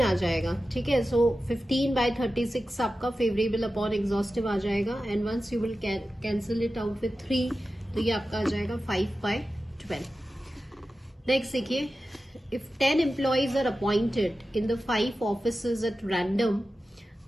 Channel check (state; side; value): normal; both; correlation 0.93